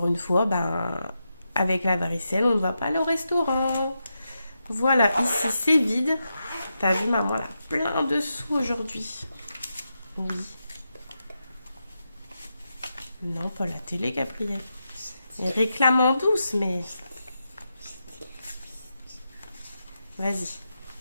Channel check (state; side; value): inverted; both; correlation -0.87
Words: une fois, ben, avec la varicelle, on ne va pas aller au restaurant. Voilà, ici c'est vide. T'as vu, maman, elle a plein de sous aujourd'hui. Oui. Non, pas la télé, Gabriel. Elle réclame en douce, mais... Vas-y,